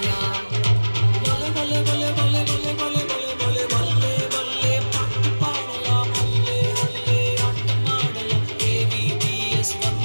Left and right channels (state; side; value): inverted; both; correlation -1.00